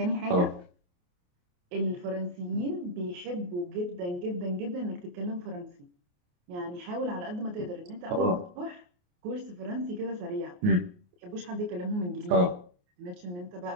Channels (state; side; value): late; left; 28 ms